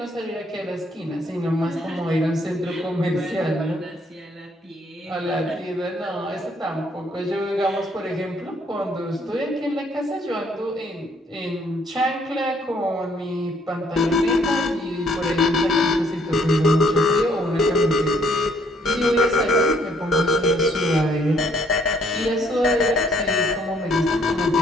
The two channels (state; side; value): normal; both; correlation 0.66